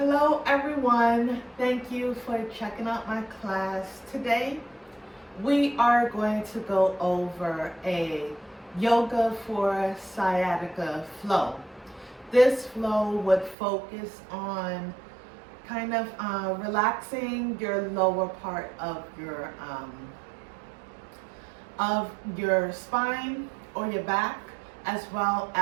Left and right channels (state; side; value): drops out; left; at 13.6 s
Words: everyone, thank you for checking out my class. Today we are going to go over a yoga for sciatica flow. This flow would focus on kind of relaxing your lower part of your spine or your back, as well